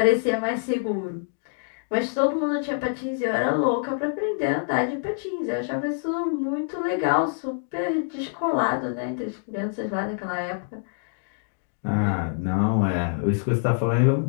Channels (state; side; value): silent; right; digital silence